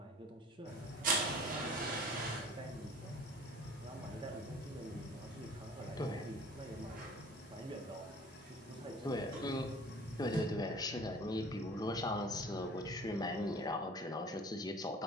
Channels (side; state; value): both; normal; correlation 0.46